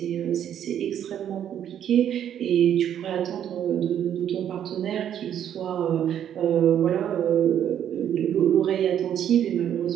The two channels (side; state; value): left; quieter; 9.9 dB